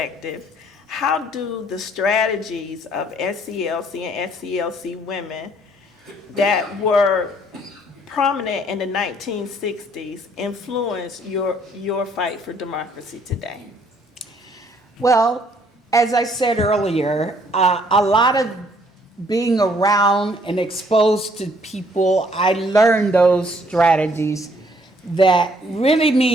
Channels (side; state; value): both; normal; correlation 0.64